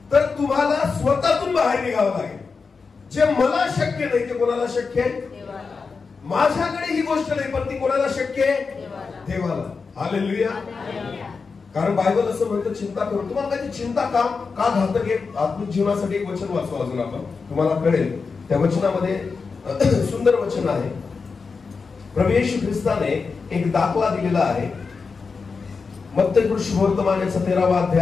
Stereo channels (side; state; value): right; quieter; 4.9 dB